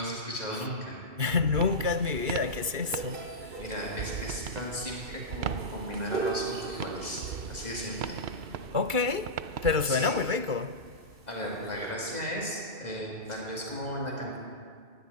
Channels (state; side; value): late; left; 2.3 ms